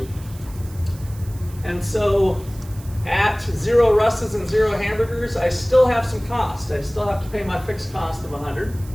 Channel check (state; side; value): noise; right; hiss, 21 dB below the sound